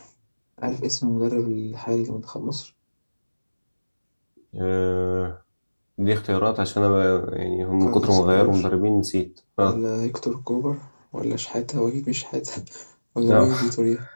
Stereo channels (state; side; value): inverted; both; correlation -1.00